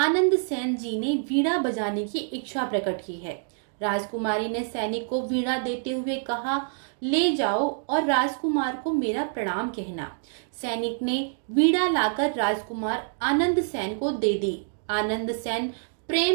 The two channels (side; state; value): left; silent; digital silence